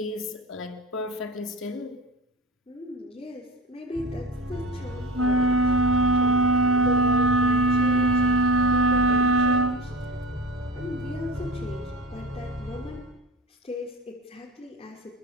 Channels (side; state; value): both; normal; correlation 0.31